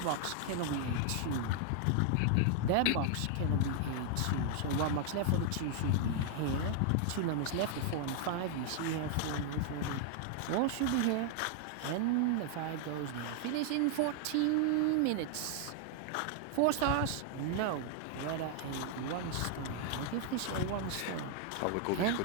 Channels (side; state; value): both; different; correlation 0.00